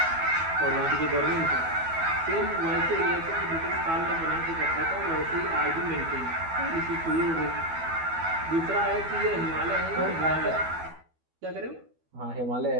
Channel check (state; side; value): late; left; 12 ms